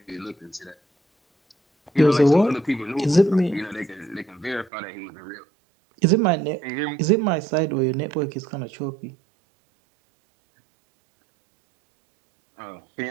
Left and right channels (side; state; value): left; drops out; at 4.7 s